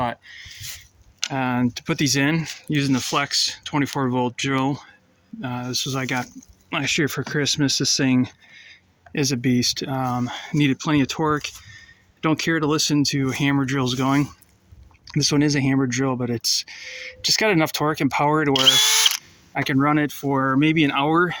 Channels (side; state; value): both; identical; correlation 1.00